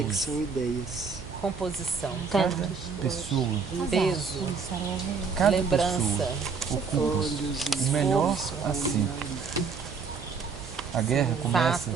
Pouso. que são ideias. Composição. Pessoa, Peso. Começaram a ouvir. cada Lembrança. pessoa ocupa Olhos o e melhor assento. A guerra começa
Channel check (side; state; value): left; quieter; 5.4 dB